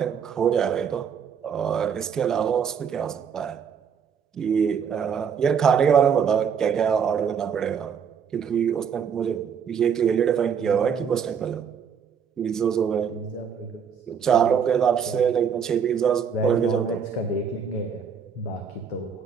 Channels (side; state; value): left; quieter; 7.1 dB